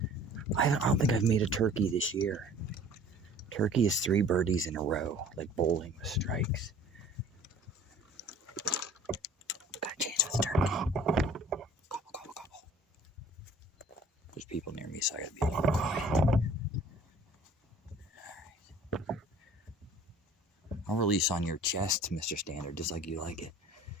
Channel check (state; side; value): normal; both; correlation 0.50